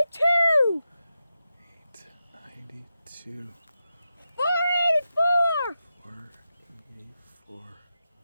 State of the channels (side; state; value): both; inverted; correlation -0.90